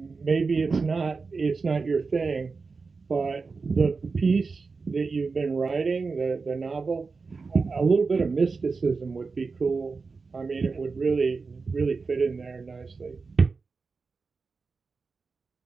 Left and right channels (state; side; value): quieter; left; 4.5 dB